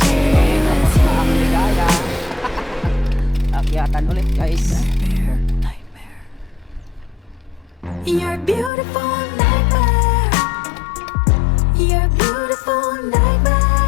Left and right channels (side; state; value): right; drops out; at 8.7 s